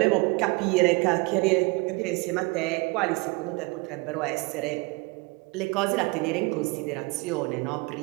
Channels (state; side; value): quieter; left; 27.1 dB